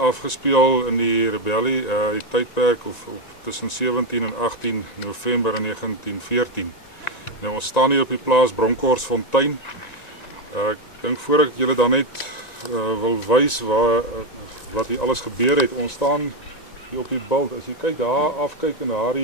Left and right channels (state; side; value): late; right; 1.9 ms